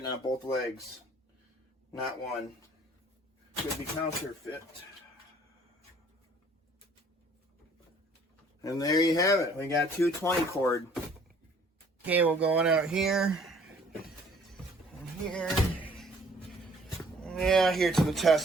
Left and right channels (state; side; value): normal; both; correlation 0.57